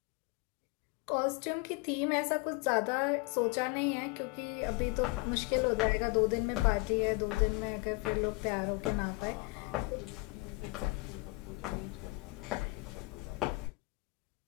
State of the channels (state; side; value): quieter; right; 26.5 dB